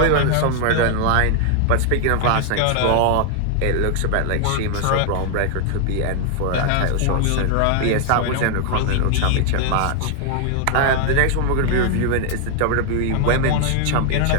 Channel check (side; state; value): both; different; correlation 0.00